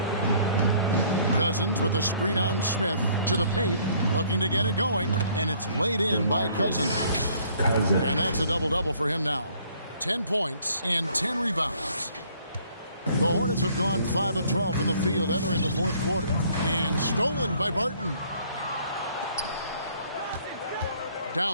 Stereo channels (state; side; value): inverted; both; correlation -0.60